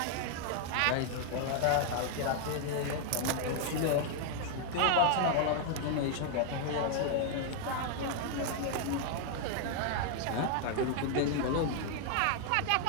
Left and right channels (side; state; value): both; different; correlation 0.00